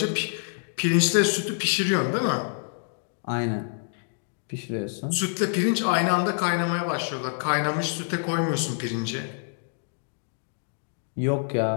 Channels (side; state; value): right; silent; digital silence